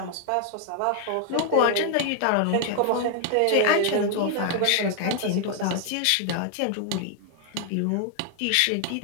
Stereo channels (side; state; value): both; different; correlation 0.00